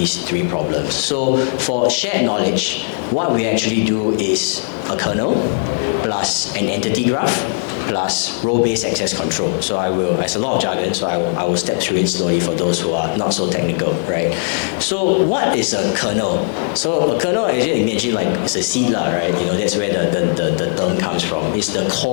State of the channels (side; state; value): right; silent; digital silence